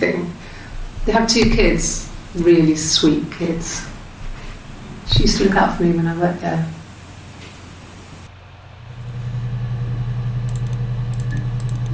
They have 2 kids, really sweet kids. She used to look out for me when I worked there.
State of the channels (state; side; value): identical; both; correlation 1.00